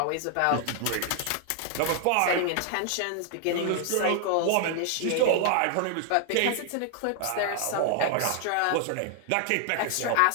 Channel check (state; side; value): different; both; correlation 0.00